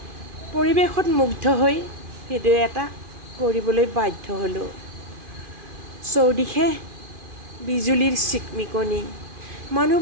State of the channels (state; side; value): late; left; 2.5 ms